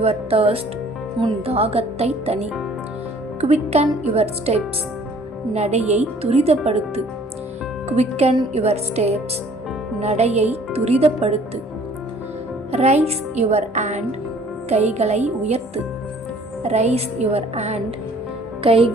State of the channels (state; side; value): normal; both; correlation 0.55